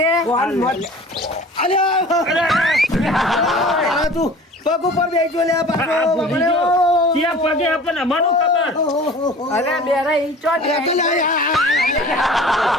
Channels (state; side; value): normal; both; correlation 0.43